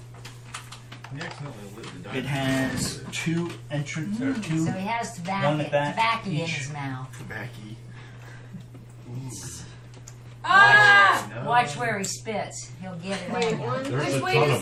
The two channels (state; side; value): identical; both; correlation 1.00